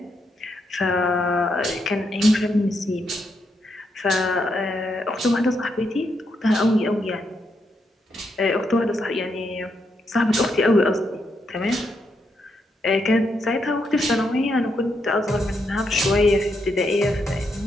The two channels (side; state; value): both; normal; correlation 0.80